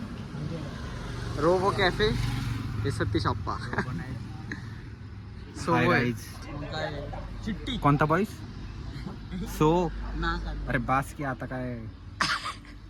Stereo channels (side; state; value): both; identical; correlation 1.00